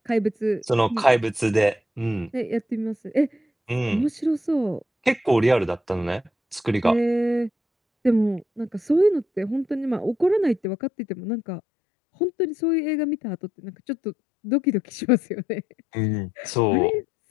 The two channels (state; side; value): drops out; right; at 10.7 s